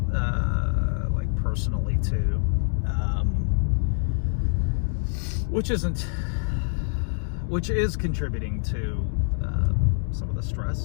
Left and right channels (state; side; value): silent; right; digital silence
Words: like personally too, which is contributing to some of the